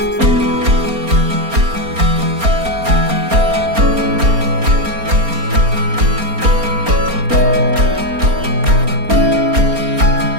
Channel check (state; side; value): late; left; 4.3 ms